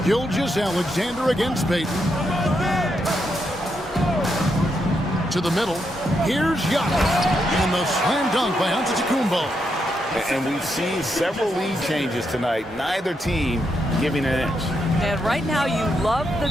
Gilgeous-Alexander against Peyton. To the middle. Here's Giannis. And the slam dunk by Antetokounmpo. And we've seen several lead changes tonight, neither team giving an inch. And right now you love the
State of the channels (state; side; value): normal; both; correlation 0.81